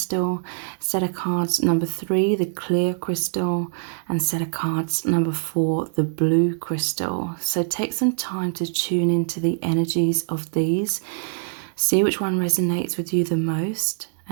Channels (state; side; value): silent; left; digital silence